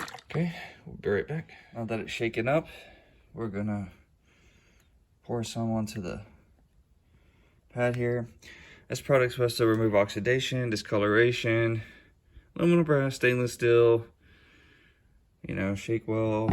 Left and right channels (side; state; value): both; identical; correlation 1.00